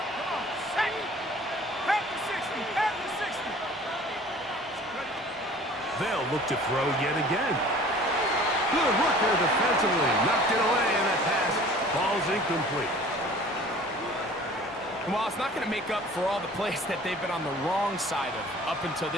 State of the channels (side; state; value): both; normal; correlation 0.48